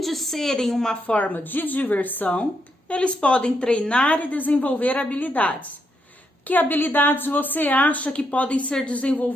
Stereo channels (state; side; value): normal; both; correlation 0.79